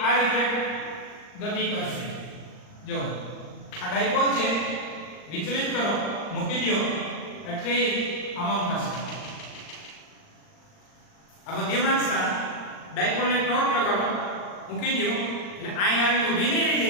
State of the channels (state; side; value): late; right; 39 ms